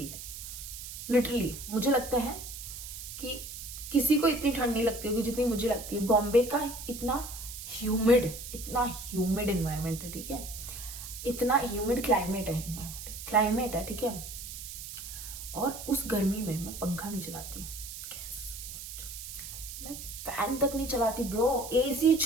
है, लिटरली मुझे लगता है कि किसी को इतनी ठंड नहीं लगती होगी जितनी मुझे लगती है। बॉम्बे का इतना ह्यूमिड इन्वायरमेंट है, ठीक है, इतना ह्यूमिड क्लाइमेट है, ठीक है, और उस गर्मी में मैं पंखा नहीं चलाती, मैं फैन तक नहीं चलाती ब्रो, AC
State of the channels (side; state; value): right; noise; hiss, 10 dB below the sound